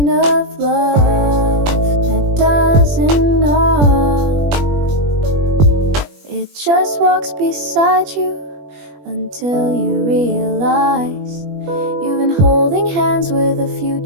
of love that doesn't knock, just walks beside you until you realize you've been holding hands with a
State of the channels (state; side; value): late; left; 21 ms